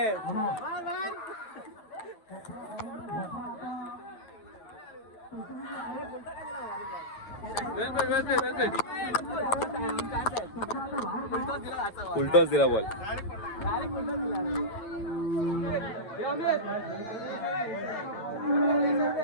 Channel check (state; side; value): late; right; 9.1 ms